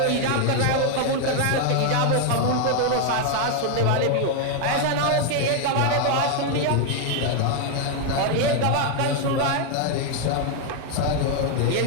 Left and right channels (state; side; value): different; both; correlation 0.01